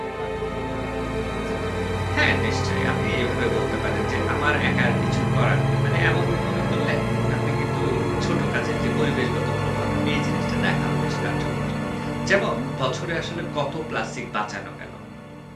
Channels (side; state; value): both; identical; correlation 1.00